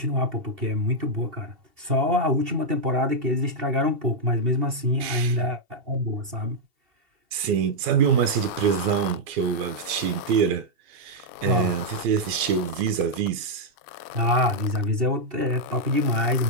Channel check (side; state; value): left; late; 2.7 ms